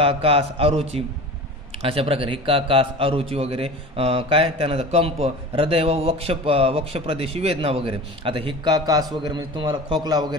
कास, अरुची अशा प्रकारे, हिक्का, कास, अरुची वगैरे काय, त्यानंतर कंप, हृदय व वक्षप्रदेशी वेदना वगैरे. आता हिक्का, कास वगैरे म्हणजे तुम्हाला खोकला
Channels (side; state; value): both; normal; correlation 0.35